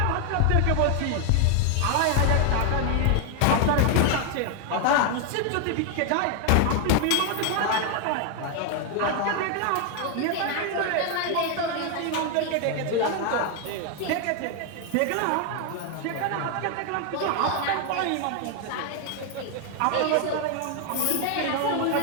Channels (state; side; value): different; both; correlation 0.00